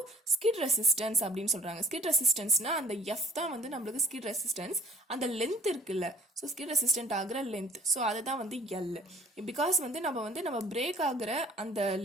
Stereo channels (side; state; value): both; normal; correlation 0.51